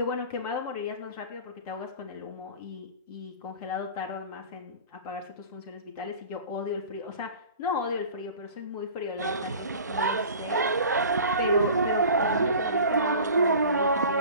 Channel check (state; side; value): inverted; both; correlation -0.41